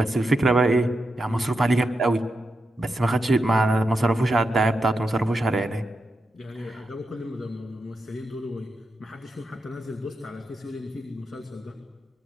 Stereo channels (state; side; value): normal; both; correlation 0.87